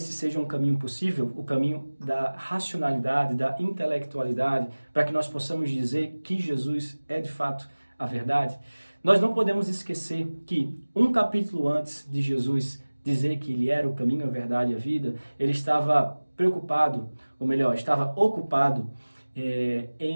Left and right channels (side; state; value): both; inverted; correlation -1.00